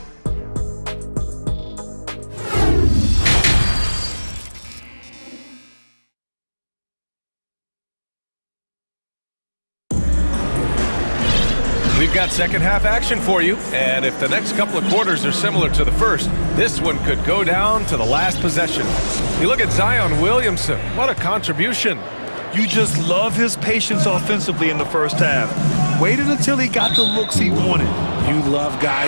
We've got second half action for you, and if the next couple of quarters are similar to the first, this one could go down to the last possession. You look at Zion Williamson, what a contribution. You just love his patience offensively in the first half. Waited until he got the looks he wanted. You love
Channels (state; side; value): inverted; both; correlation -1.00